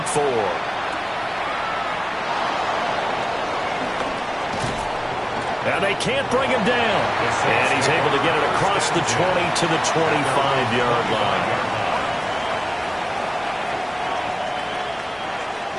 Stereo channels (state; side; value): identical; both; correlation 1.00